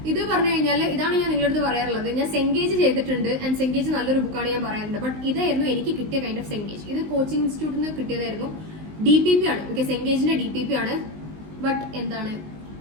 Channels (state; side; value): late; left; 19 ms